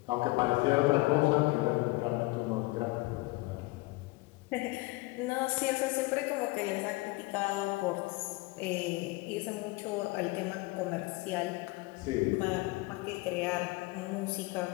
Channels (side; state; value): right; quieter; 22.4 dB